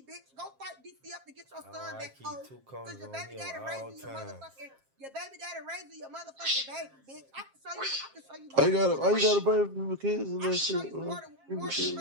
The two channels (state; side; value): late; left; 7.5 ms